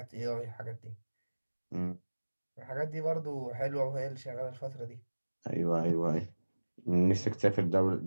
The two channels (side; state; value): both; inverted; correlation -1.00